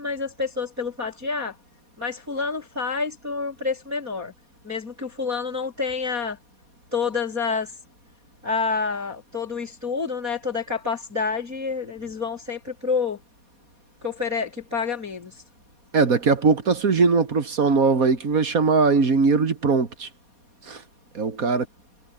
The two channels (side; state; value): left; late; 4.2 ms